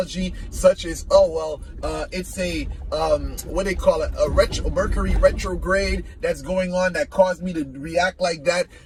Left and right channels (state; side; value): identical; both; correlation 1.00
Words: such as, it's a what they call it, a Mercury retrograde that's going on that caused me to react like that.